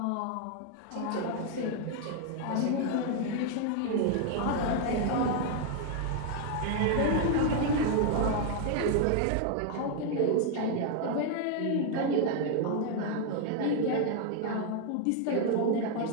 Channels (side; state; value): both; different; correlation 0.00